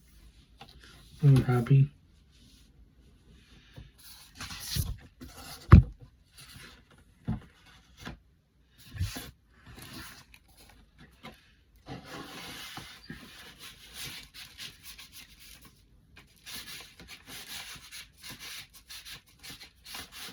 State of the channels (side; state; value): both; identical; correlation 1.00